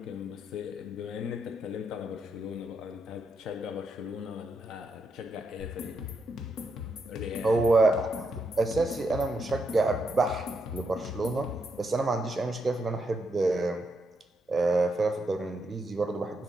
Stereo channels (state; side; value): normal; both; correlation 0.80